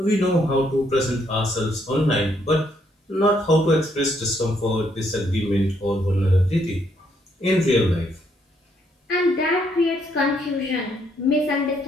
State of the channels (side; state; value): both; normal; correlation 0.72